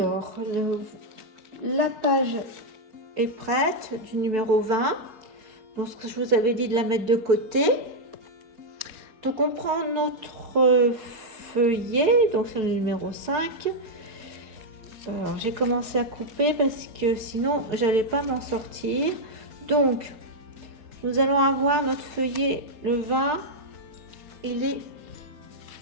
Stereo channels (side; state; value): left; late; 4.4 ms